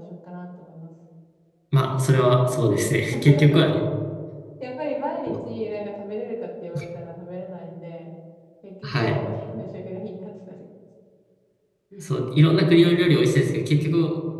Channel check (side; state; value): both; identical; correlation 1.00